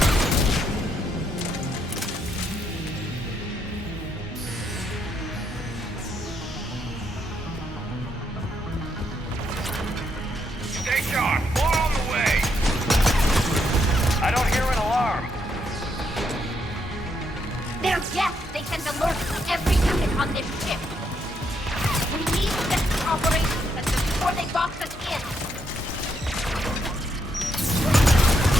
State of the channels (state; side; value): normal; both; correlation 0.77